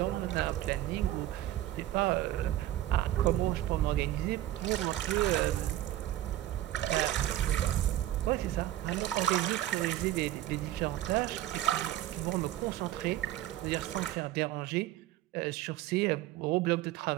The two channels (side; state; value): left; quieter; 13.8 dB